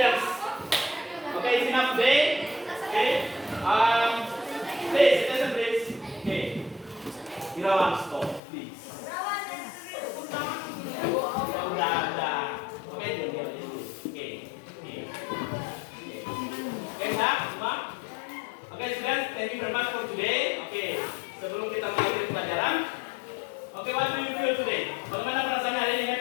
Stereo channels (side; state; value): right; drops out; at 8.4 s